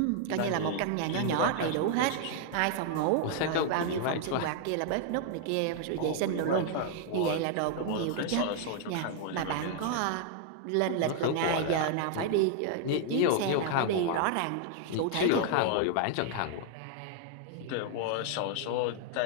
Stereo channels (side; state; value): both; different; correlation 0.00